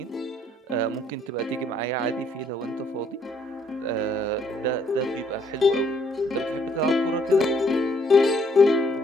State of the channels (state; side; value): normal; both; correlation 0.67